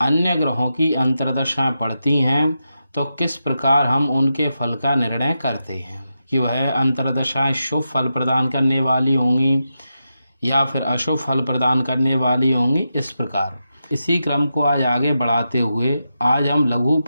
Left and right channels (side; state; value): both; inverted; correlation -0.88